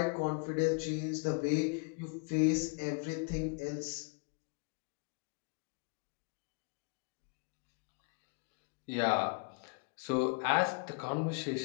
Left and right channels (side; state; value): right; quieter; 35.2 dB